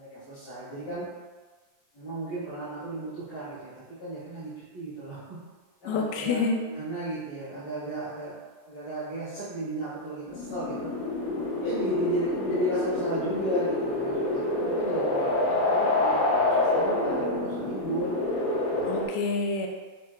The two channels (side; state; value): right; late; 29 ms